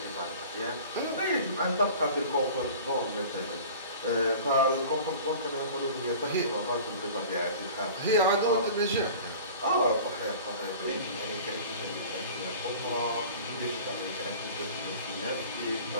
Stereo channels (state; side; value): inverted; both; correlation -0.41